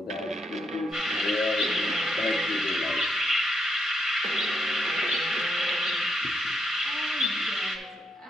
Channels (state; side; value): normal; both; correlation 0.78